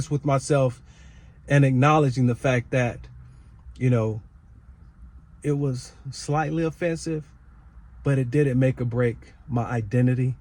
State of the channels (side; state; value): both; identical; correlation 1.00